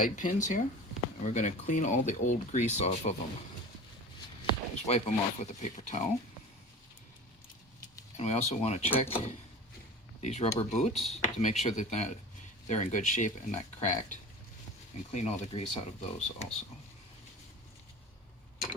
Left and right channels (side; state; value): both; normal; correlation 0.36